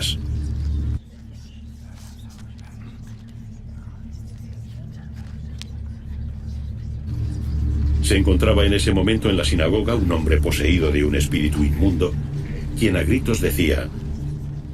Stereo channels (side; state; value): both; identical; correlation 1.00